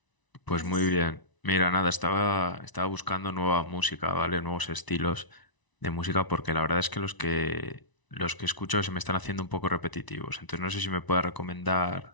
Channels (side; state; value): right; late; 1.0 ms